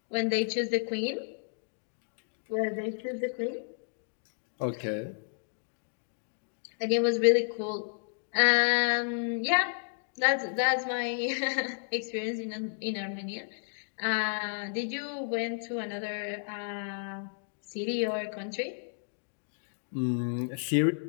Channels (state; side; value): silent; right; digital silence